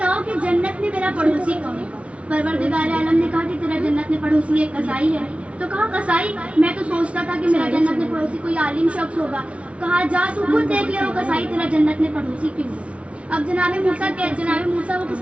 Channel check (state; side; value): late; left; 0.062 ms